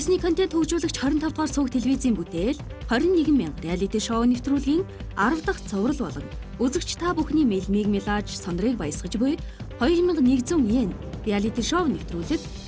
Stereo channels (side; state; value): both; identical; correlation 1.00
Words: контент хөгжүүлэгч 25 дугаар сувг телевизийн бүтээл 21,000 реалити шоу нэвтрүүлгийн 10 дахь цоврал болон үзэгч та бүхний мэлмиг мэлааж сондрыг баясгаж буй 2100 йен реалити шоу нэвтрүүлэг